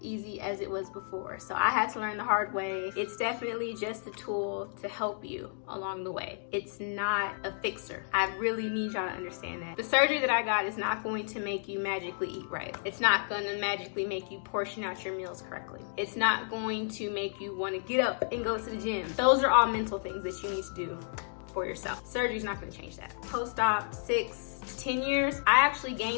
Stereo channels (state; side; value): silent; right; digital silence